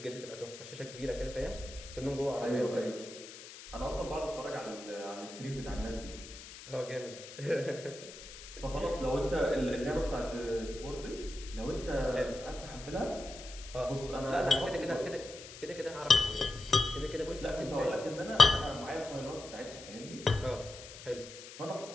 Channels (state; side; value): noise; left; hiss, 14 dB below the sound